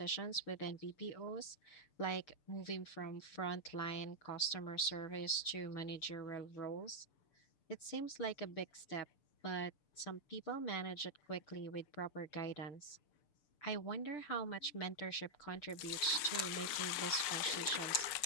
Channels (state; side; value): late; right; 6.7 ms